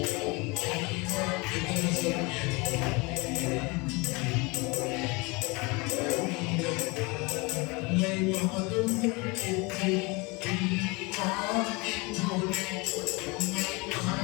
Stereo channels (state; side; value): quieter; right; 26.7 dB